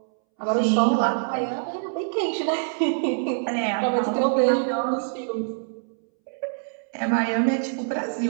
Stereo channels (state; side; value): silent; left; 62 dB below the other